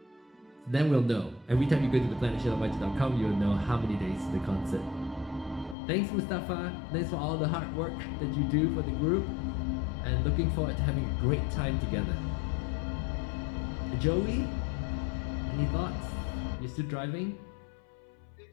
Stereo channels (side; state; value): right; drops out; at 5.8 s